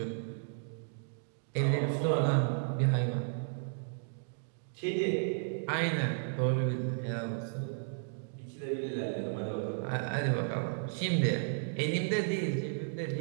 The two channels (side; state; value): left; silent; digital silence